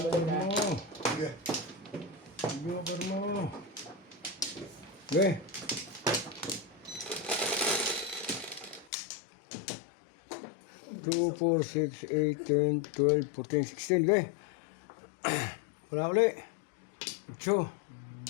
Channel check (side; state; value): right; drops out; at 8.9 s